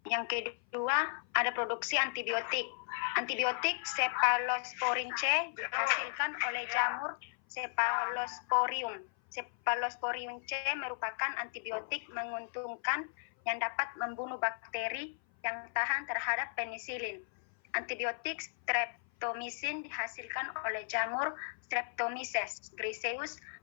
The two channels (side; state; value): right; silent; 54 dB below the other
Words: yang kedua ada produksi antibiotik. Antibiotik Cephalosporin C dihasilkan oleh jamur Cephalosporium. Cephalosporium C merupakan antibiotik menguntungkan yang dapat membunuh bakteri yang tahan terhadap penisilin. Antibiotik Streptomycin dihasilkan oleh jamur Streptomyces griseus